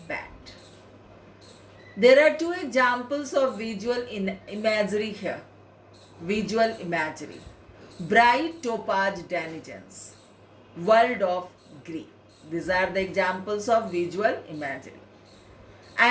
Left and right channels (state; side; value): identical; both; correlation 1.00